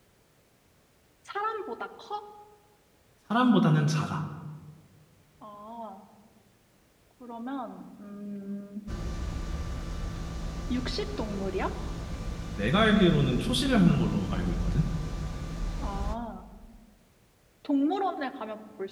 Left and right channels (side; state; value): both; identical; correlation 1.00